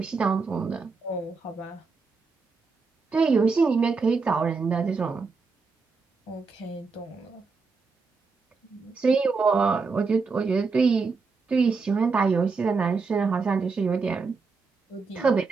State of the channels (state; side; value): quieter; left; 4.5 dB